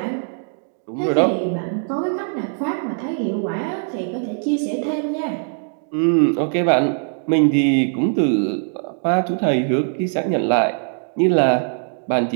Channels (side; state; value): left; silent; digital silence